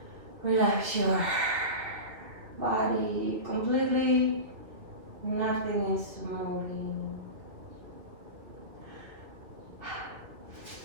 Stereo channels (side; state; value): left; late; 2.8 ms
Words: Relax your body completely. Nothing is moving.